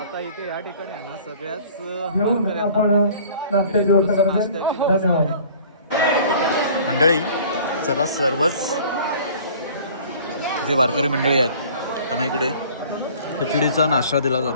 इथे या ठिकाणी आहे ना सगळ्याच घेऊन आपण नाश्त्याची व्यवस्था करतो. धन्यवाद मंडळी. चला सर्वच जे वारकरी मंडळी आहेत त्यांना इकडे खिचडीचा नाश्ता दिला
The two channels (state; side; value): inverted; both; correlation -0.49